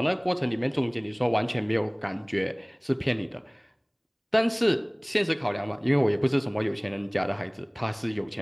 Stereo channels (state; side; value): identical; both; correlation 1.00